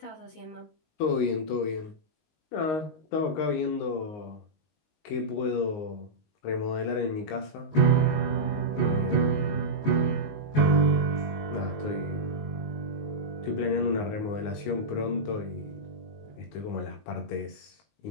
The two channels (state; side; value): late; right; 19 ms